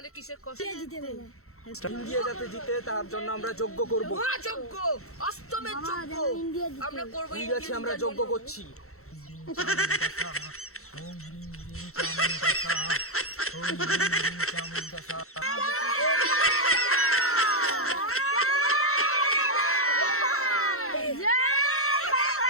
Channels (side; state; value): right; late; 0.63 ms